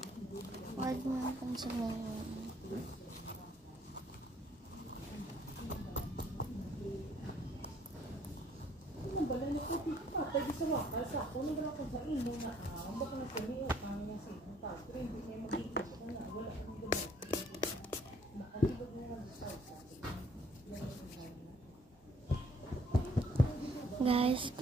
Huwag mo ang pansinin. Guys,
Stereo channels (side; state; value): both; normal; correlation 0.62